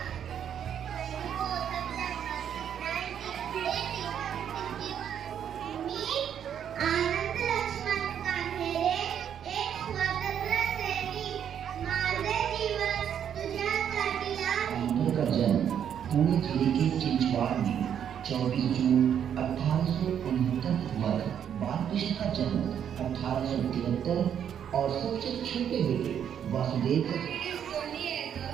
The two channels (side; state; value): left; quieter; 8.9 dB